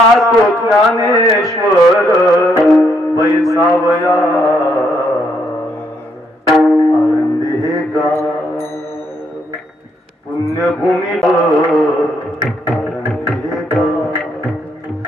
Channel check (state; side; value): normal; both; correlation 0.74